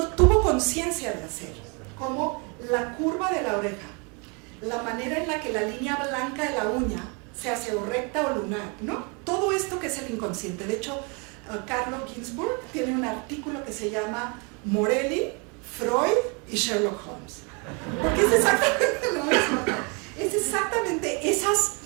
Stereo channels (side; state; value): left; quieter; 32.9 dB